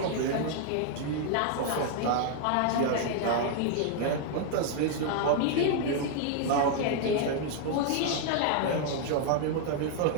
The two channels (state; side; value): different; both; correlation 0.00